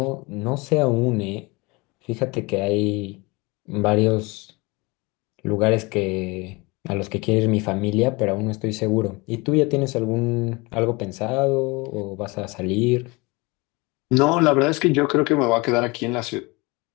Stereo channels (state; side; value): quieter; right; 25.6 dB